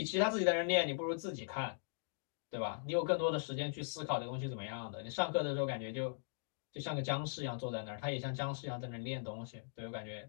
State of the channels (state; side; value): silent; right; digital silence